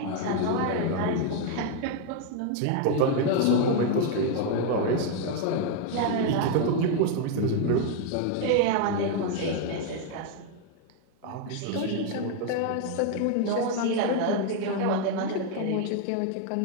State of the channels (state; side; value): different; both; correlation 0.00